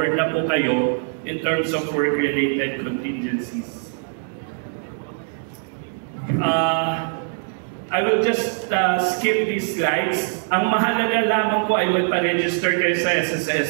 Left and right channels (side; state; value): left; silent; digital silence